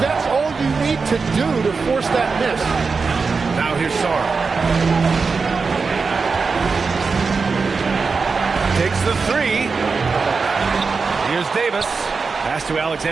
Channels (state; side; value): quieter; left; 4.7 dB